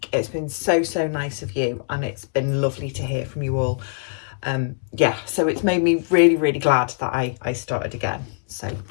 It's been so nice of you and it's been lovely to hear from you all. So it's made me really glad that I started again. So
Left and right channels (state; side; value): silent; right; 64 dB below the other